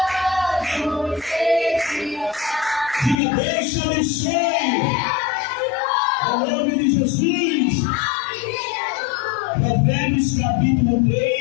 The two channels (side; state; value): right; drops out; at 3.2 s